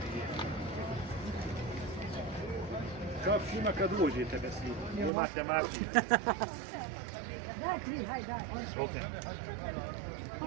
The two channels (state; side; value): drops out; left; at 5.1 s